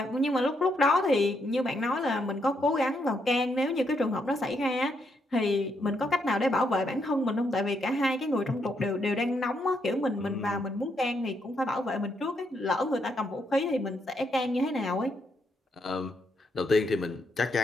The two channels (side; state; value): both; normal; correlation 0.77